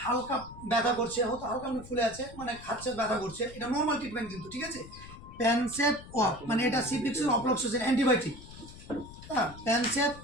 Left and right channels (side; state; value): left; noise; rumble, 16 dB below the sound